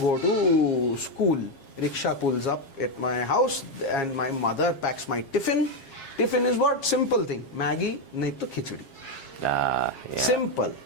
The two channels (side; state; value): right; late; 7.4 ms